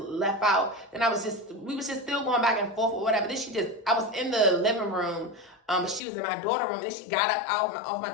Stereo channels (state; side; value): drops out; right; at 6.0 s